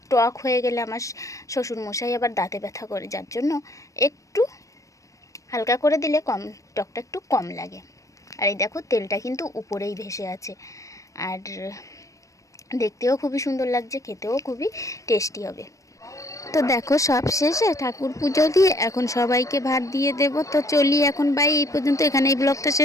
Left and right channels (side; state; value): right; late; 0.16 ms